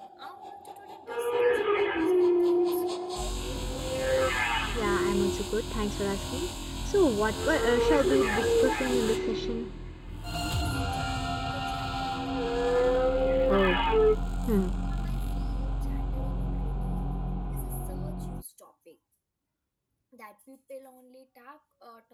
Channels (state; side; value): identical; both; correlation 1.00